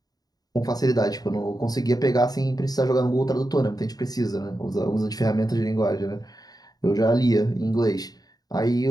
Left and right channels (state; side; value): late; right; 0.19 ms